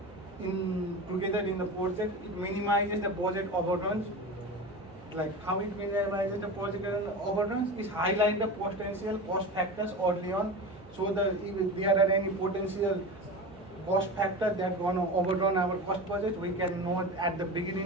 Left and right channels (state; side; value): normal; both; correlation 0.28